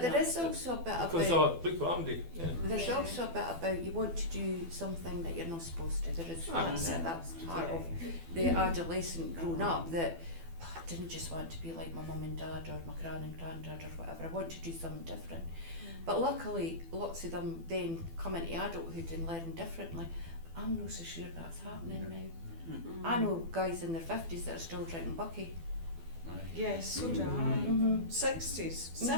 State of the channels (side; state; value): left; late; 12 ms